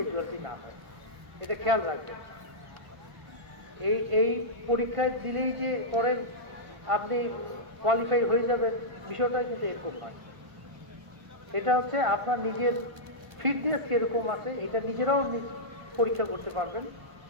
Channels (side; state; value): left; late; 1.0 ms